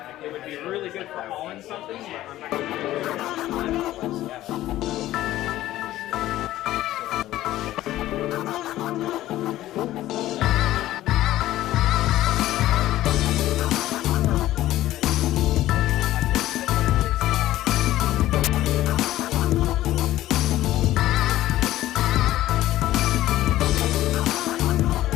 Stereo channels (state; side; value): quieter; right; 14.8 dB